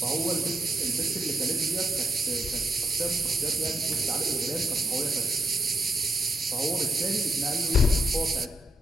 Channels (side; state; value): both; normal; correlation 0.80